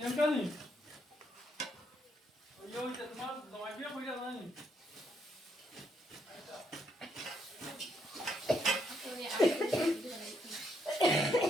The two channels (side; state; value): both; normal; correlation 0.75